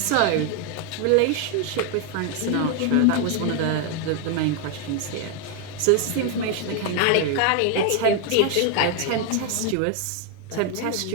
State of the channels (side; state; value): both; different; correlation 0.01